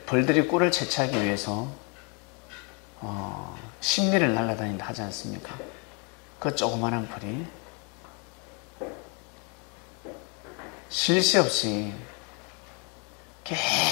벌들이 꿀을 채취하기 위해서 심리를 날아다닌다 하지 않습니까? 그 조그마한 벌이 쉴 새 없이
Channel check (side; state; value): right; quieter; 34.3 dB